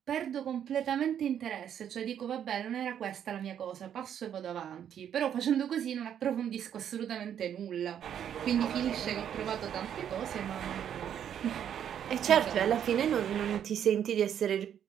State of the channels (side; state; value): left; quieter; 9.3 dB